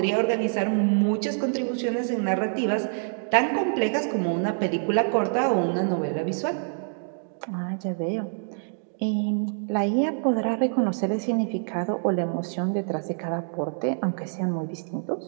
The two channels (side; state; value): left; silent; digital silence